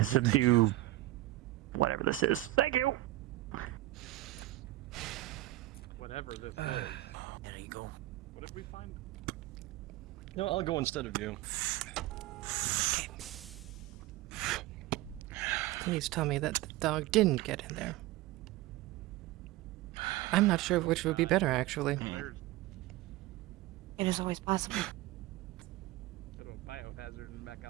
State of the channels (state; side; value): quieter; left; 17.2 dB